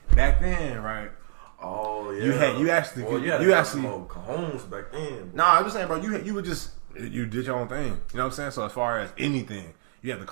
Back then, right? Oh yeah. You actually more cajones back then. Nah, I'm just saying, bro. You would just You did your own thing. You know what I'm saying? So as far as anything, you have to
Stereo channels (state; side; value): silent; left; digital silence